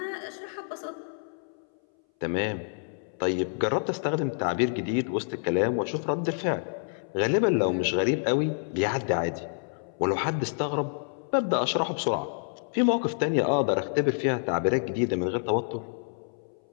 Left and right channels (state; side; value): silent; right; 59 dB below the other